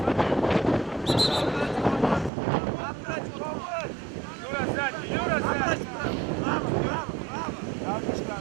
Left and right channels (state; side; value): drops out; left; at 2.3 s